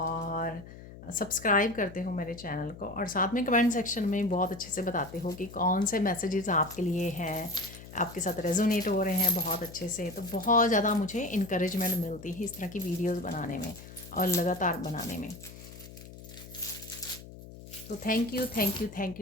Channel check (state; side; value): noise; left; hum, 16 dB below the sound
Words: सब्सक्राइब करते हो मेरे चैनल को, और साथ में कमेंट सेक्शन में बहुत अच्छे से बताते हो कि कौन से मैसेजेस आपके लिए हैं, आपके साथ रेजोनेट हो रहे हैं बहुत अच्छे से। तो बहुत ज़्यादा मुझे इनकरेजमेंट मिलती है इस तरह की वीडियोस बनाने में और लगातार बनाने में। तो thank you, thank you, thank